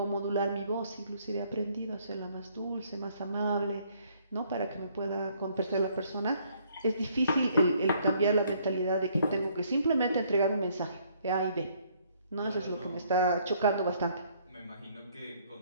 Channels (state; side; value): inverted; both; correlation -0.65